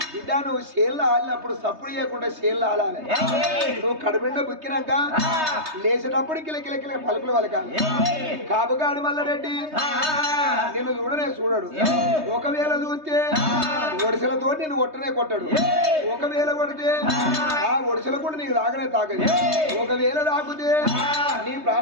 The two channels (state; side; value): late; left; 3.2 ms